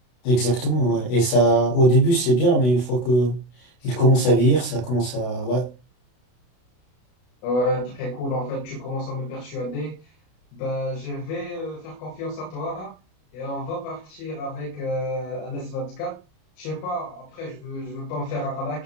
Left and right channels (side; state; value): right; late; 32 ms